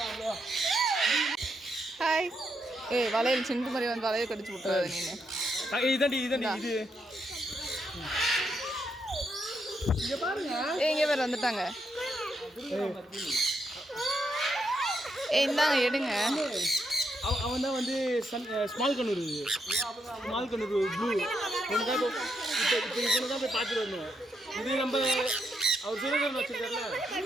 ஹாய் ஏய் வளையல் சிந்து மாதிரி வந்து வளையல் கடிச்சு விட்டுறாது நீ இது இங்க பாருங்க இங்கே பேர் வந்துட்டாங்க. இந்தாங்க எடுங்க. அவன் தான் வந்து ஸ்மால் கண்ணூர் ப்ளூ ஒன்று தான் இப்போ தான் போய் பார்த்துட்டு வரணும். இது நம்ம அவர் சுரேந்திரன் வச்சுருக்காருல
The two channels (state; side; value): normal; both; correlation 0.80